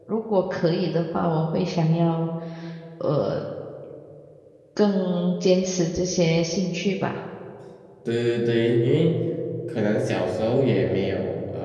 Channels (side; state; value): both; identical; correlation 1.00